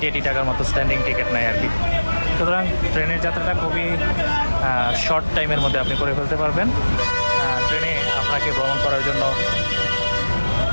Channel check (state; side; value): inverted; both; correlation -1.00